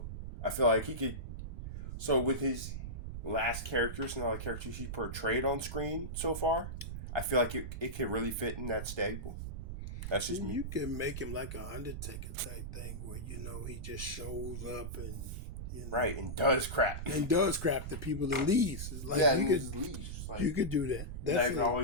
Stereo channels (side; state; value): right; noise; rumble, 6 dB below the sound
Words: I feel like he could. So with his last characters and all the characters he portrayed on screen so far, I feel like it can really fit in that stable. That's just me. You can make him like an Undertaker type thing where, he just shows up and, Right, and does crap. And does crap to people and leaves. It's like leaves. Like, you could do that. That's not